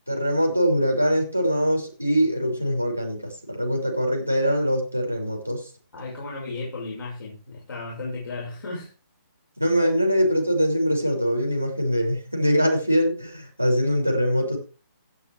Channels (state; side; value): inverted; both; correlation -0.87